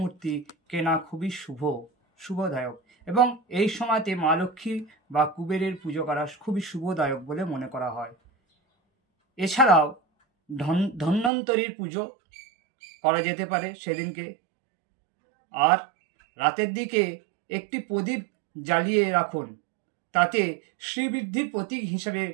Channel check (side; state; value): left; drops out; at 11.3 s